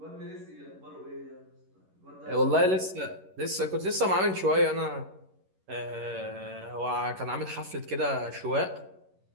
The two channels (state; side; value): late; left; 11 ms